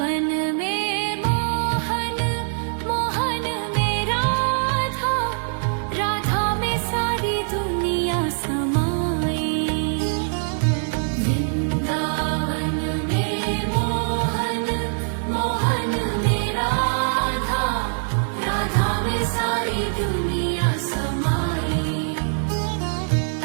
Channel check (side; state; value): left; silent; digital silence